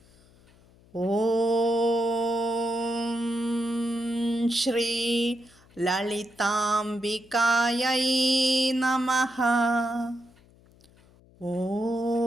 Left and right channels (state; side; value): noise; left; hum, 28 dB below the sound